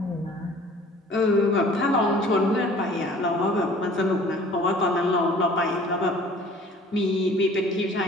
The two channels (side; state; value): both; normal; correlation 0.50